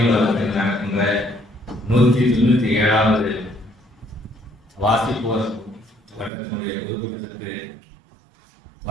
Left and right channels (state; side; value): drops out; left; at 6.3 s